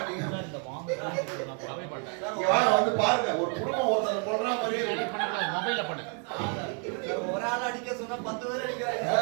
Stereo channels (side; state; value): left; quieter; 38.4 dB